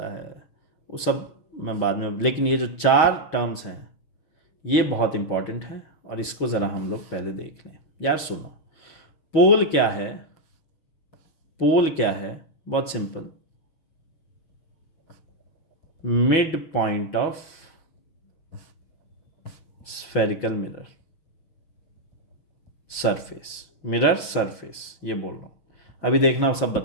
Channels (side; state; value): right; late; 6.2 ms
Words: है, वो सब मैं बाद में, लेकिन ये जो 4 टर्म्स हैं ये बहुत इंपॉर्टेंट है और इसको ज़रा हम लोग पहले देख लें। यार सुनो, पोल क्या है, पोल क्या है, बहुत simple, mid point of spherical mirror surface, mirror surface, ये बोल रहा हूँ। अभी देखना सब